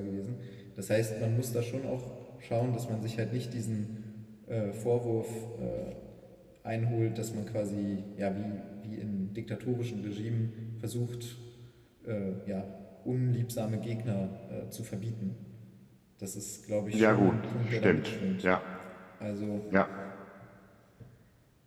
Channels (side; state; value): both; identical; correlation 1.00